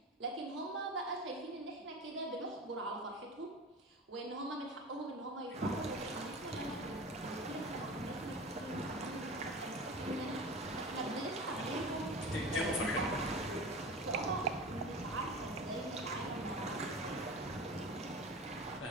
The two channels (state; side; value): normal; both; correlation 0.33